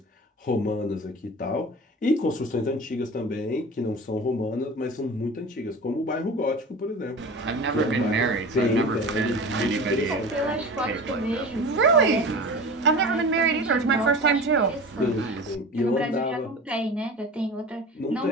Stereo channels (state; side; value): normal; both; correlation 0.34